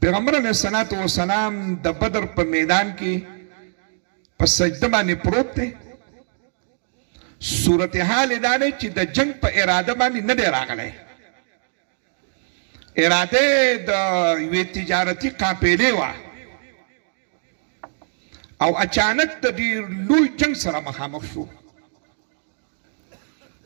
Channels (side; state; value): left; silent; digital silence